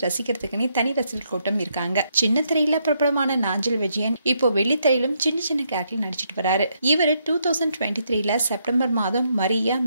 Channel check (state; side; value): inverted; both; correlation -0.76